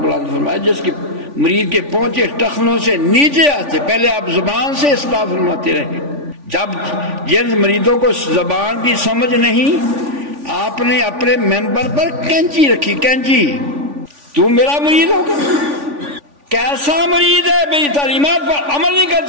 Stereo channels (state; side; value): late; left; 3.5 ms